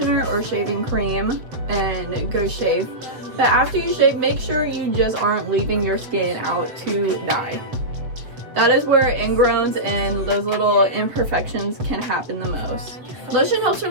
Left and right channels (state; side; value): late; left; 7.9 ms